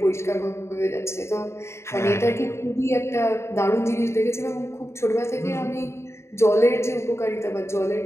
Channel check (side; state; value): right; late; 0.13 ms